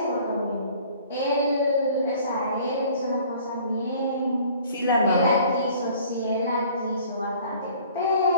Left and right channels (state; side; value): inverted; both; correlation -0.52